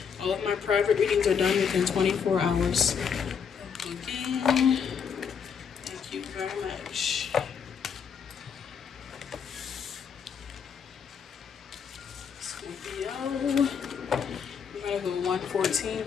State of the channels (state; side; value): quieter; right; 6.9 dB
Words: All of my private readings are done within 24 hours of booking. Thank you very much. Scorpio. 114